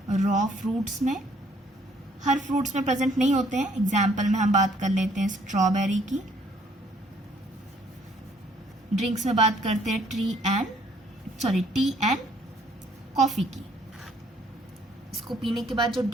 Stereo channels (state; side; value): normal; both; correlation 0.63